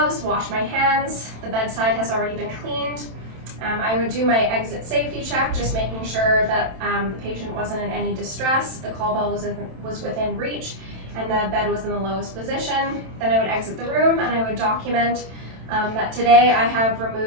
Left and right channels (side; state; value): left; late; 27 ms